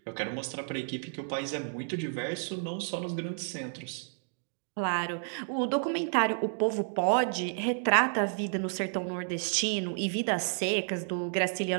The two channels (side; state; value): left; silent; 57 dB below the other